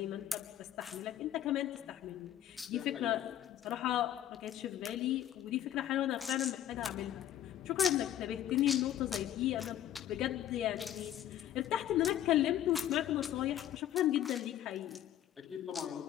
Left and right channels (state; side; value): quieter; right; 11.6 dB